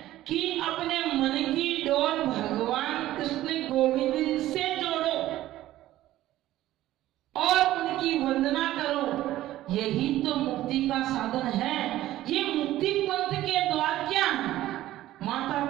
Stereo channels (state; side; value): quieter; left; 14.7 dB